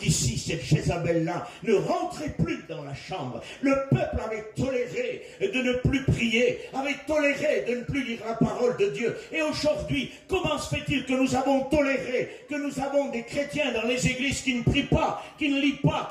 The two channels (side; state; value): both; identical; correlation 1.00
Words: cette Jézabel-là ne rentrait plus dans la chambre. Le peuple avait toléré de ne plus prier, avait toléré de ne plus lire la parole de Dieu. Et aujourd'hui, comment se fait-il que nous avons toléré, que nous avons des chrétiens dans les églises qui ne prient pas, qui ne lisent pas,